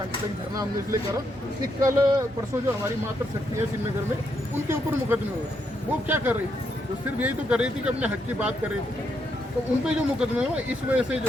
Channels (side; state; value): both; normal; correlation 0.78